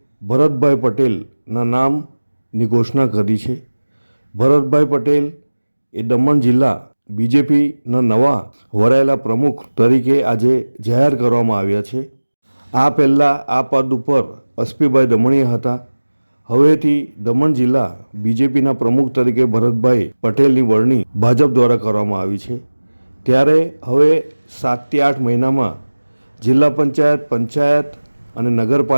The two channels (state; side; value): inverted; both; correlation -1.00